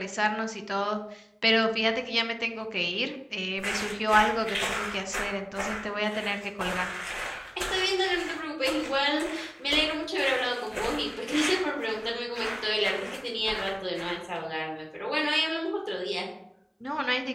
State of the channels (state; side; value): identical; both; correlation 1.00